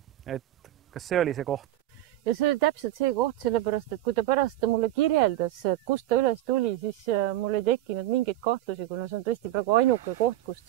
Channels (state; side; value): quieter; left; 14.4 dB